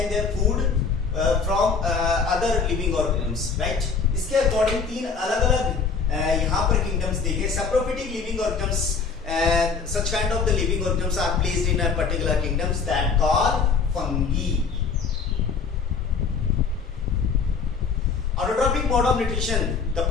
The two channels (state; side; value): quieter; right; 5.3 dB